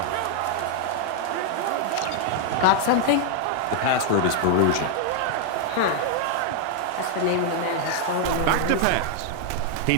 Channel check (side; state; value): both; different; correlation 0.00